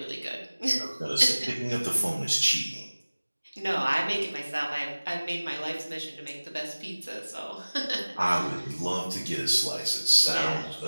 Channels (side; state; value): both; inverted; correlation -1.00